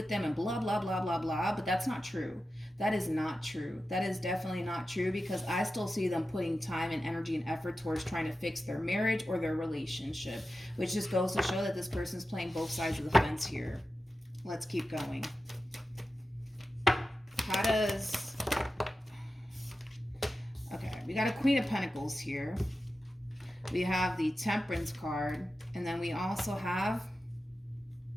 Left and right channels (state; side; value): normal; both; correlation 0.92